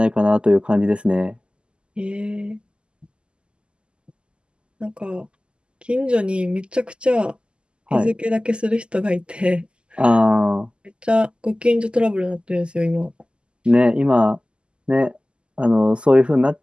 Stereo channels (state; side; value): late; left; 0.051 ms